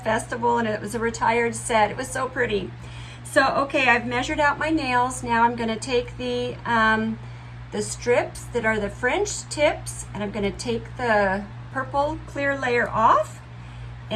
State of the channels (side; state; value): both; identical; correlation 1.00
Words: and it was a retired set. It was so pretty. So okay, I've measured out my nails. Now I'm going to take the strips that are the French tips, and I'm going to take the purple clear layer off.